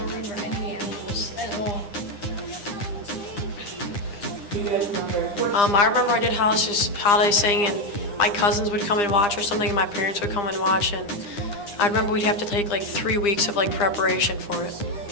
remember any animals at all. Do you guys remember? I remember I did holiday sing, and my cousins would come and watch or something, and my parents would come and watch, and I remember we'd have to take like 3 weeks of like preparation for it.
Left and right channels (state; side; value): late; right; 9.9 ms